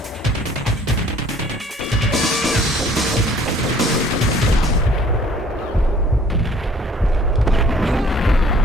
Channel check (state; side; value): normal; both; correlation 0.55